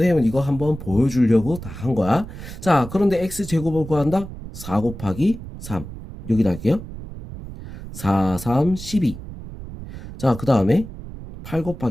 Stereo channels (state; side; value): noise; right; rumble, 12 dB below the sound